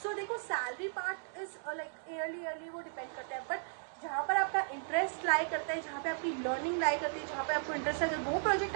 सो देखो सैलरी पार्ट इज ईयरली वो डिपेंड करता है, बट जहाँ पर आपका इंटरेस्ट लाई करता है, जहाँ पे आपकी लर्निंग लाई करती है, जहाँ पे आपको इंटरेस्ट है, अगर वो प्रोजेक्ट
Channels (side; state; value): left; silent; digital silence